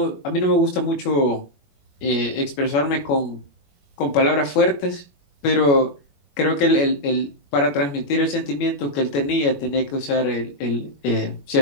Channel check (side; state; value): right; late; 21 ms